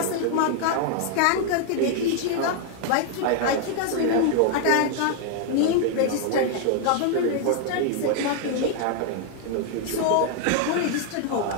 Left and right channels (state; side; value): different; both; correlation 0.00